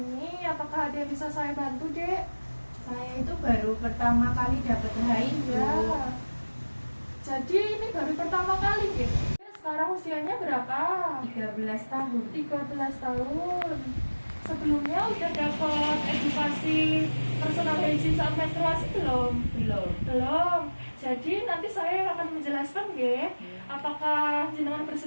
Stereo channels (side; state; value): both; inverted; correlation -1.00